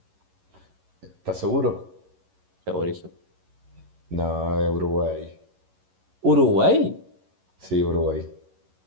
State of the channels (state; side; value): late; left; 11 ms